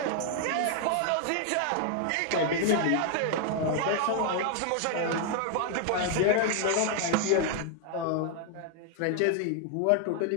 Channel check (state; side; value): different; both; correlation 0.00